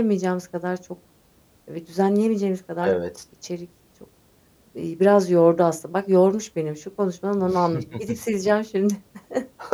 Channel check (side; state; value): both; identical; correlation 1.00